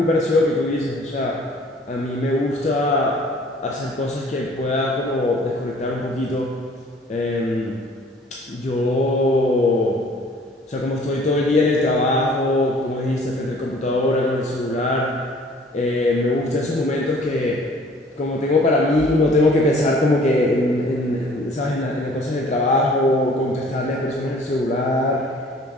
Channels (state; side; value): normal; both; correlation 0.53